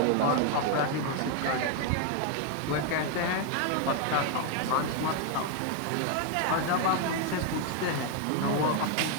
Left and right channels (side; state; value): both; different; correlation 0.01